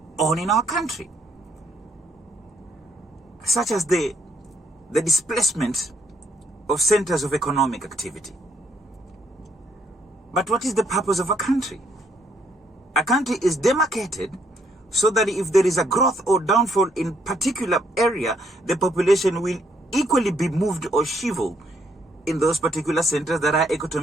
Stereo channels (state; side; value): normal; both; correlation 0.71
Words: on in our country, such as the displacement of centers of economic activity. But what is the purpose of a country? A country is demarcated so that if there is a growth or downfall in particular area, the population will equally be moved or shriveled in those particular centers that our